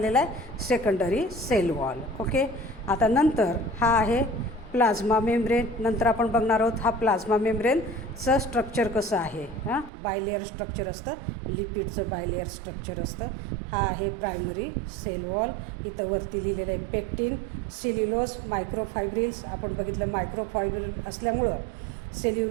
आहे, सेकंडरी सेल वॉल. ओके. आता नंतर हा आहे प्लाझ्मा मेम्ब्रेन. नंतर आपण बघणार आहोत हा प्लाझ्मा मेम्ब्रेनचं स्ट्रक्चर कसं आहे. बायलेअर स्ट्रक्चर असतं, लिपिडचं बायलेअर स्ट्रक्चर असतं. हा आहे प्रायमरी सेल वॉल. इथं वरती लिहिलेलं आहे पेक्टिन, सेल्युलोज, मायक्रोफायब्रिल्स. आपण बघितलं मायक्रोफायब्रिल असल्यामुळं,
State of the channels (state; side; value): drops out; left; at 9.9 s